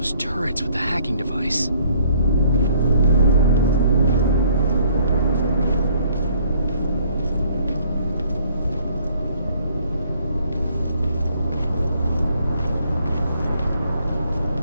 turrets with the hacking device.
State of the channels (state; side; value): inverted; both; correlation -0.62